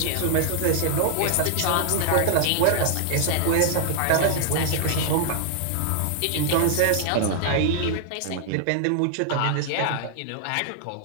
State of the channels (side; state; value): both; different; correlation -0.01